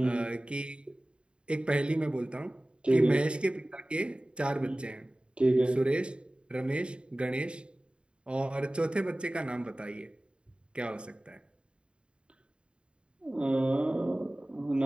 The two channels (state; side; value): late; left; 0.054 ms